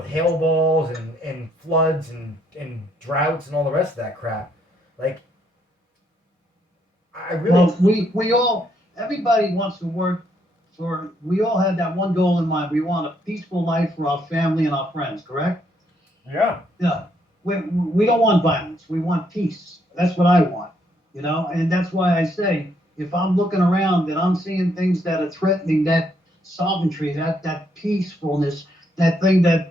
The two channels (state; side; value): normal; both; correlation 0.72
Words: hail balls and floods and droughts and all the rest of that crap. Like, I really. Well, we all, everybody wants to work for, we all had that one goal in mind. We want a peaceful life for our family and our friends, correct? Yeah. Yeah. We don't want violence. We want peace. That's what I want, you know? And that's why I say, if I'm looking around and I'm seeing things that are threatening that sovereignty, that peacefulness, that thing